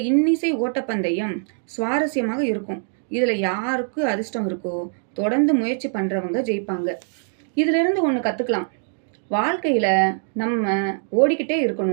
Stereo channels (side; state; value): left; silent; 64 dB below the other